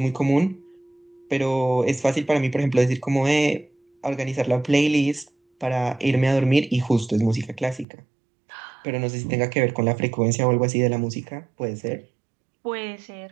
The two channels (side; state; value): left; drops out; at 7.9 s